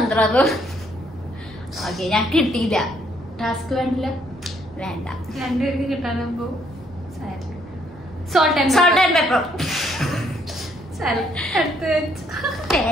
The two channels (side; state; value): both; normal; correlation 0.69